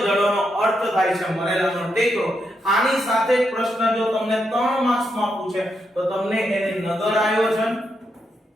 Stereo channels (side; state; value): both; normal; correlation 0.81